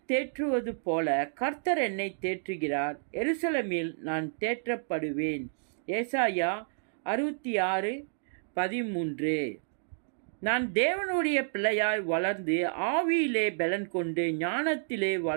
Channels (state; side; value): silent; left; digital silence